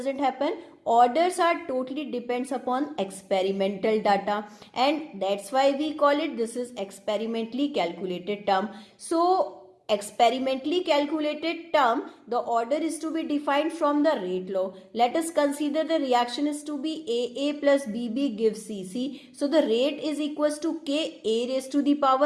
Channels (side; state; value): both; identical; correlation 1.00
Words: happen. Orders are totally depends upon experimental data, and that's why we call it, this is experimentally calculated term. So experimentally calculated term, the order is to be defined from the rate law. Let us consider the reaction is to be AA plus BB gives CC. So the rate is equals to K, A raised to the